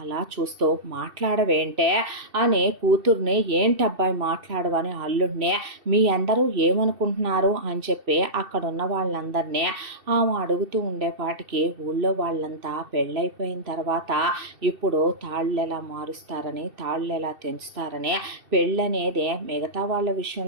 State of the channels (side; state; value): left; late; 2.7 ms